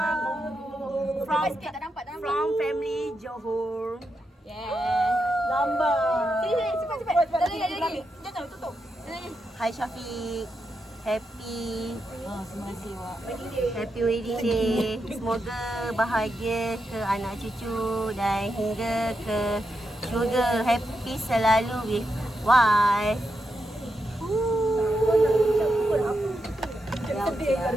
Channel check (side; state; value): both; normal; correlation 0.85